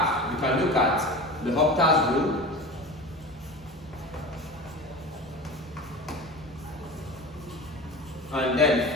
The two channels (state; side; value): normal; both; correlation 0.32